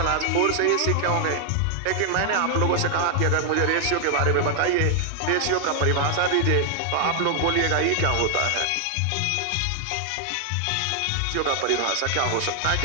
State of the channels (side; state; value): both; different; correlation 0.00